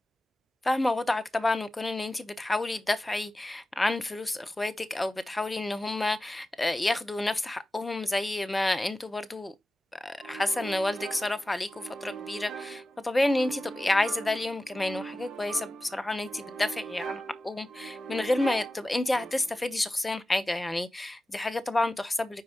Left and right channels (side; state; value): both; normal; correlation 0.95